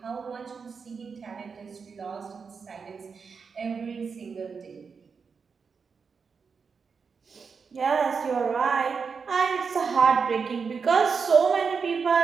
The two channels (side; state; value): left; quieter; 5.5 dB